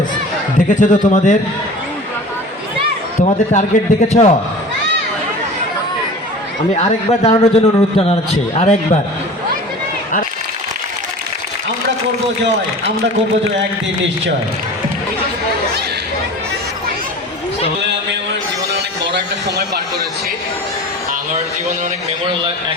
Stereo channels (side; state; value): both; normal; correlation 0.39